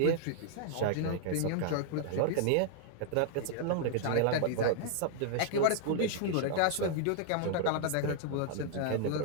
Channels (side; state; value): both; different; correlation -0.01